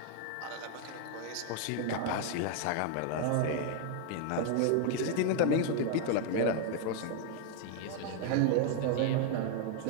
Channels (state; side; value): different; both; correlation 0.00